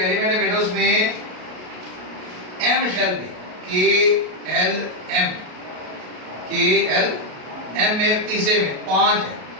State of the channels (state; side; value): late; left; 33 ms